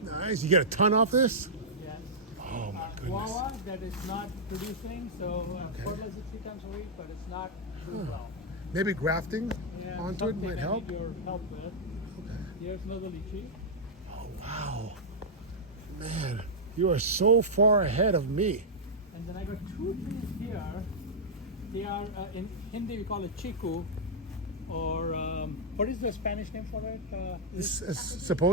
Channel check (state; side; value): normal; both; correlation -0.07